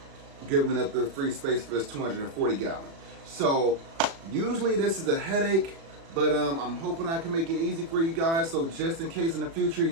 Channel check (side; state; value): left; late; 36 ms